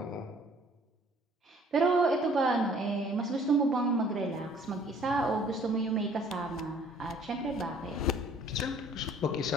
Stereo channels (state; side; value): normal; both; correlation 0.56